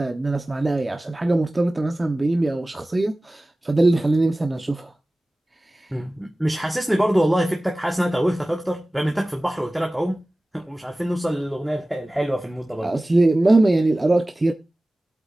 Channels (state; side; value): normal; both; correlation 0.97